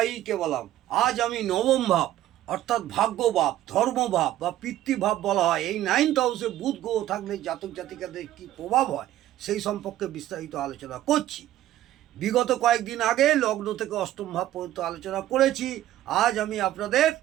কেবলম। আজ আমি নবম ভাব অর্থাৎ ভাগ্যভাব, ধর্মভাব বা পিতৃভাব বলা হয়, এই 9th হাউসে বুধ গ্রহ থাকলে জাতক জাতিকাদের কী প্রভাব হয় সেই সম্পর্কে বিস্তারিত আলোচনা করছি। বিগত কয়েকদিন আগে লগ্ন থেকে অষ্টম ভাব পর্যন্ত আলোচনা করেছি। আজ আমি আপনাদের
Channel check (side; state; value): left; quieter; 13.5 dB